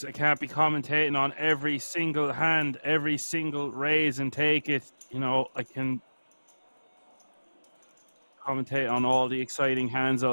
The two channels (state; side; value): inverted; both; correlation -1.00